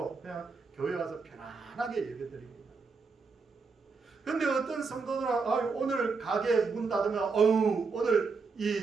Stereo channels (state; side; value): quieter; left; 4.6 dB